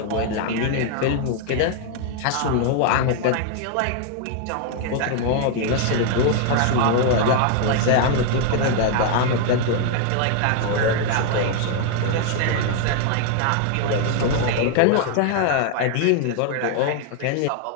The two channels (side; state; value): both; different; correlation 0.00